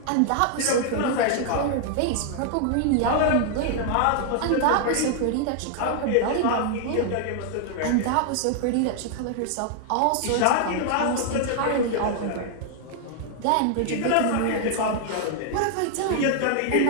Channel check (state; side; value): different; both; correlation 0.00